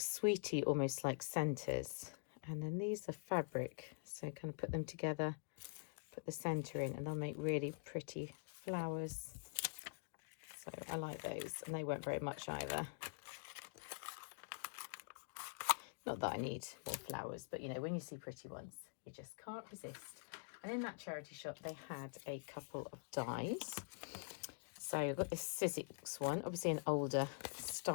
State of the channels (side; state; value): right; silent; digital silence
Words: almost like centres. And then these are fabric. So kind of put them together, put the centre in, and they'll make really pretty flowers. So I like those, and they weren't very much either. Not that I need more flowers, but you know, when you see pretty ones, you just can't resist. And in that charity shop, they had a couple of dies. So I've got this Sizzix one, obviously an older